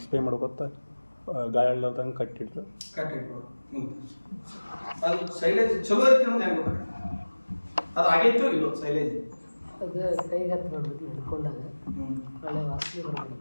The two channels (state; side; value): inverted; both; correlation -1.00